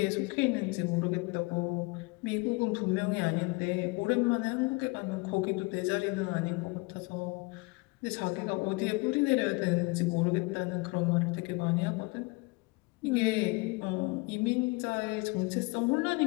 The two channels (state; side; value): quieter; right; 26.6 dB